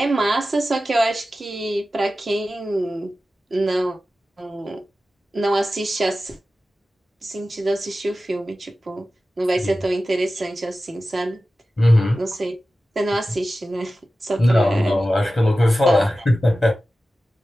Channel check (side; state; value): both; normal; correlation 0.94